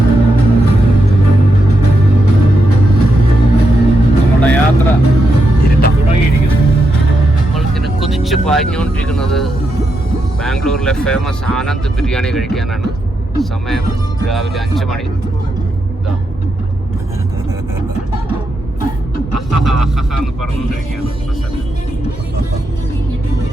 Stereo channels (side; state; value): both; normal; correlation 0.83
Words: നമ്മുടെ യാത്ര തുടങ്ങിയിരിക്കുന്നു. നമ്മൾക്കിങ്ങനെ കുതിച്ച് പാഞ്ഞുകൊണ്ടിരിക്കുന്നത് ബാംഗ്ലൂരിലെ ഫേമസ് ആനന്ദ് ബിരിയാണി കഴിക്കാനാണ്. സമയം രാവിലെ 5 മണി. ഇതാ എന്ന് പറഞ്ഞുകൊണ്ടിരിക്കുകയാണ്.